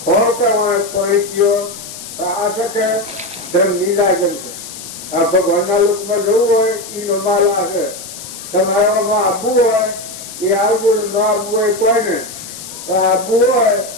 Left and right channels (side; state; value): left; noise; hiss, 12 dB below the sound